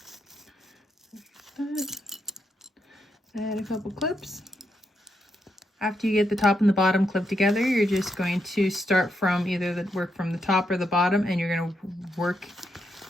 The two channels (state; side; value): normal; both; correlation 0.80